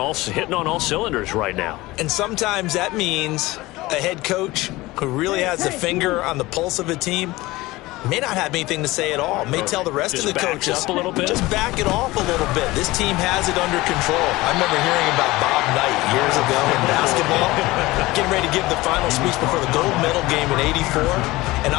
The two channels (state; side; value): quieter; right; 19.8 dB